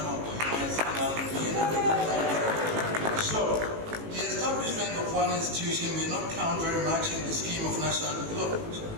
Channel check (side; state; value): left; late; 18 ms